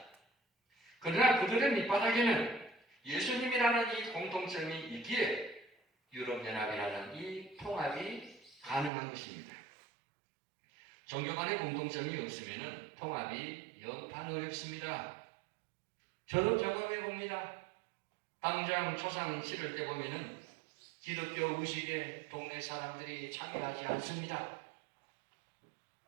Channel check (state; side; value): drops out; left; at 8.9 s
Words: 그러나 그들의 밑바닥에는 예수님이라는 이 공통점이 있기에 유럽연합이라는 이 통합이 가능한 것입니다. 종교 간의 공통점이 없으면 통합이 영판 어렵습니다. 저도 경험해 봅니다. 당장 초상 치를 때 보면은 기독교 의식에 동네 사람들이 참여하지 않습니다.